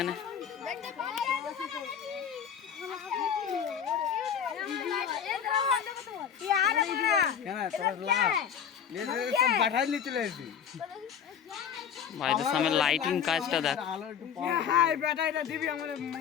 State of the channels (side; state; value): right; quieter; 8.0 dB